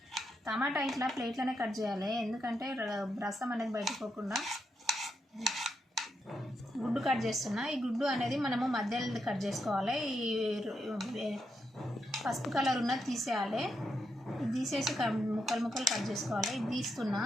టమాటా ఇట్లా ప్లేట్లోనే కట్ చేయాలి, ఎందుకంటే రసం అనేది బయటకు పోకుండా. గుడ్డు కట్ చేస్తున్నా. ఈ గుడ్డు అనేది మనము మధ్యలో కట్ చేసుకోవాలి. ఈ పసుపు కలర్ ఉన్నది తీసేయాలి. ఇది తీసేసి ముక్కలు కట్ చేసుకోవాలి. ఇది తీస్తున్నా.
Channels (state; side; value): normal; both; correlation 0.82